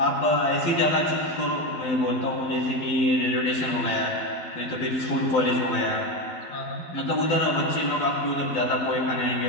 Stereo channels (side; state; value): right; late; 12 ms